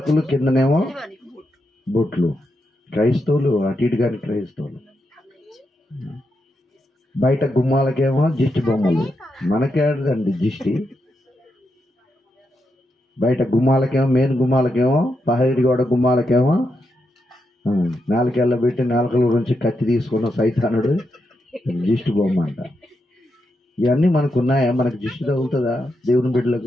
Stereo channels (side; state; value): both; normal; correlation 0.84